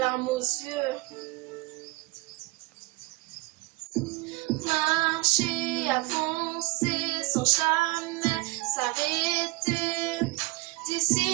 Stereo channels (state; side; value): quieter; left; 22.5 dB